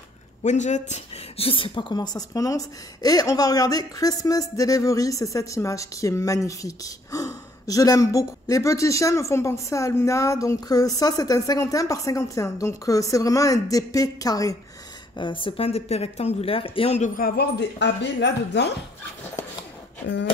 Je ne sais pas comment ça se prononce. Et on va regarder Christmas Delivery. C'est cette image qui est magnifique. Oh, je l'aime beaucoup. Les petits chiens me font penser à Luna. Donc ça, c'est un 51 par 51. Donc c'est vraiment un DP carré. C'est pas un DP rectangulaire. Et on devrait avoir des AB là-dedans.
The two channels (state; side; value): normal; both; correlation 0.66